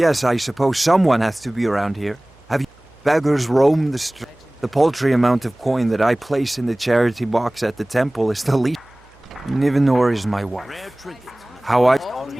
I suppose someone has to be around here. Have you beggars roam the street? The paltry amount of coin that I place in the charity box at the temple is the least. Nivenor is my wife.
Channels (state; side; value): noise; right; hum, 29 dB below the sound